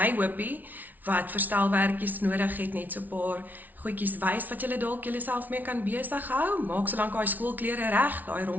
hoopie wat verstelwerkies nodig het, net so 'n paar goedjies wys wat julle dalk julleself mee kan besig hou. Maak solank daai skoolklere reg, daai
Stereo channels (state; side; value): late; left; 0.080 ms